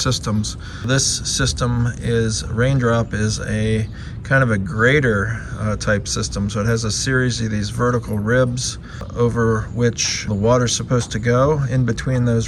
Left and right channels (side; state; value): both; identical; correlation 1.00